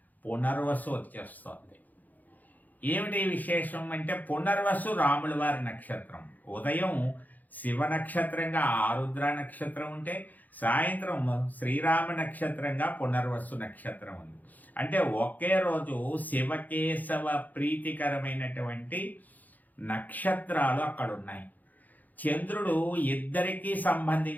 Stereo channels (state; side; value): late; right; 0.082 ms